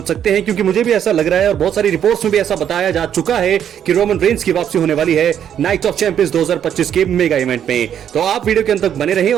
सकते हैं, क्योंकि मुझे भी ऐसा लग रहा है और बहुत सारी रिपोर्ट्स में भी ऐसा बताया जा चुका है कि रोमन रेंस की वापसी होने वाली है नाइट ऑफ चैंपियंस 2025 के मेगा इवेंट में। तो आप वीडियो के अंत तक बने रहें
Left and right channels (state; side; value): quieter; left; 9.3 dB